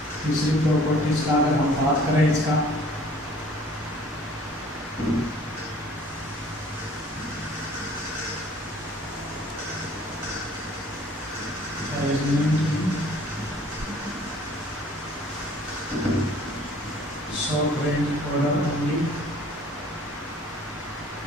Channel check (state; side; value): normal; both; correlation 0.54